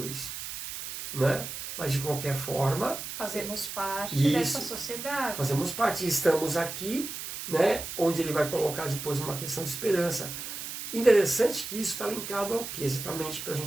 isso. Né? Mas de qualquer forma... Fazemos parte dessa sociedade. Fazemos parte. Estamos aqui, né, onde ele vai colocar depois uma questão de esperança. Interessante que isso está linkado ao quê? Exatamente para a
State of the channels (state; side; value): noise; right; hiss, 7 dB below the sound